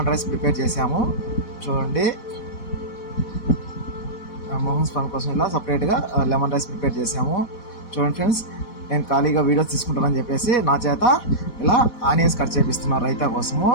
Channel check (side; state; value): right; late; 4.1 ms